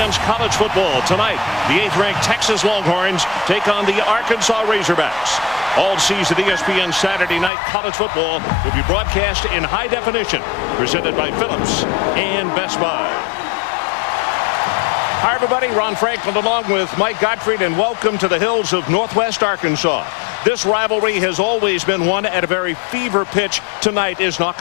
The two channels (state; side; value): drops out; right; at 7.5 s